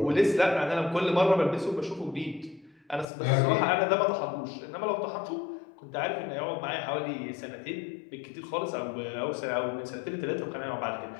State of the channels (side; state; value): right; drops out; at 3.1 s